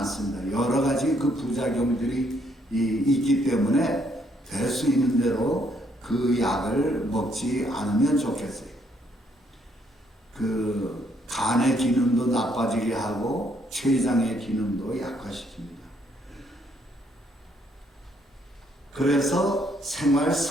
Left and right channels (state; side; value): normal; both; correlation 0.70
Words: 여러 가지 그 부작용들이 있기 때문에 될 수 있는 대로 그 약을 먹지 않으면 좋겠어요. 그 간의 기능도 나빠지게 하고 췌장의 기능도 약화시킵니다. 그래서 생활